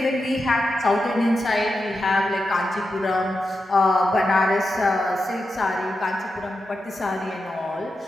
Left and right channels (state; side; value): normal; both; correlation 0.88